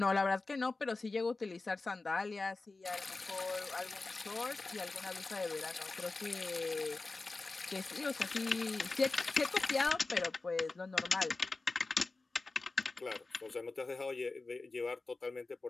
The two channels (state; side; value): quieter; right; 3.5 dB